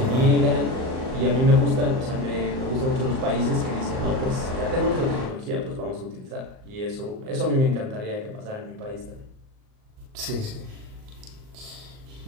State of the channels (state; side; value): late; left; 38 ms